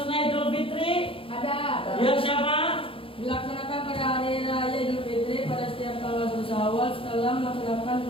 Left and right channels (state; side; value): late; right; 0.26 ms